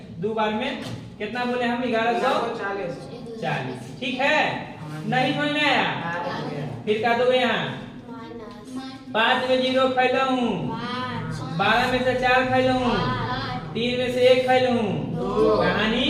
2 बार में कितना बोले हम, 1140, ठीक है। नहीं समझ में आया, फिर का दोगे यहाँ 5 में 0 खैला हूँ, 12 में से 4 खैला हूँ, 3 में से 1 खैला हूँ, कहानी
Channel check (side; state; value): both; identical; correlation 1.00